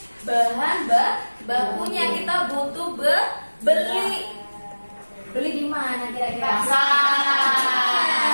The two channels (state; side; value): inverted; both; correlation -1.00